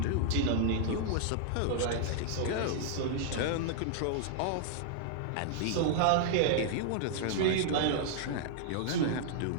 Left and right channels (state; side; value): different; both; correlation -0.01